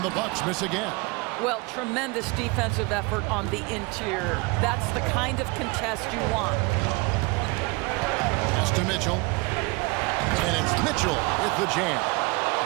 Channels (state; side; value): quieter; left; 26.2 dB